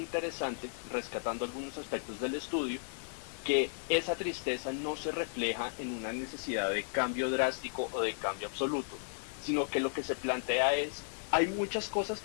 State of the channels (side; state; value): right; silent; digital silence